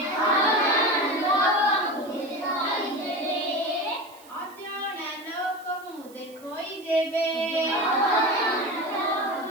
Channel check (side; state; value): right; noise; hiss, 24 dB below the sound